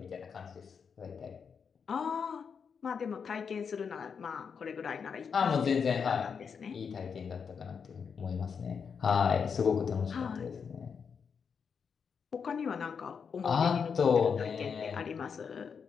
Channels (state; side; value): quieter; right; 6.3 dB